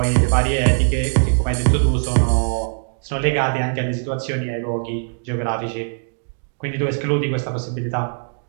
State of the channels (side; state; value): left; silent; digital silence